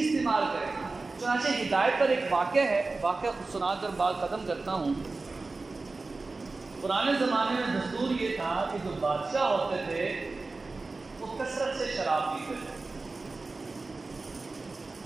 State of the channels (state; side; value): quieter; left; 3.6 dB